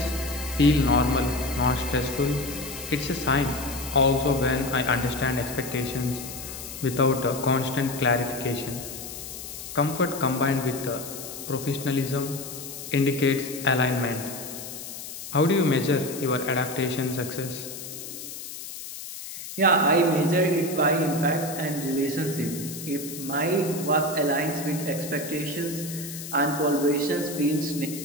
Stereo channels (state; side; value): noise; left; hiss, 10 dB below the sound